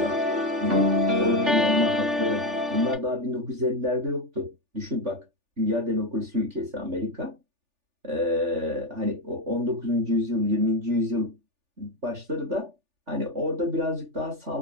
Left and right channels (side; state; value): left; late; 3.4 ms